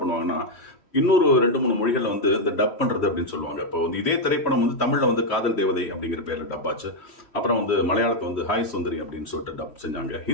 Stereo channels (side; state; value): right; late; 3.1 ms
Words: பண்ணுவாங்கன்னா, இன்னொரு 2-3 மொழிகள் இந்த டப் பண்றது அப்படின்னு சொல்லுவாங்க. இப்போ இதே திரைப்படம் தமிழ்ல காதல் தேவதை அப்படிங்கிற பேர்ல டப் ஆச்சு. அப்புறம் மலையாளத்தை ஹாய் சுந்தரி அப்படின்னு சொல்லிட்டு டப் செஞ்சாங்க.